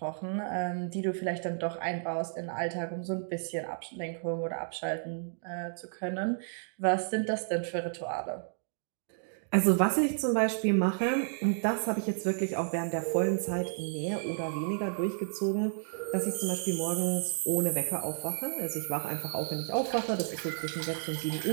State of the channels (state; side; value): silent; left; digital silence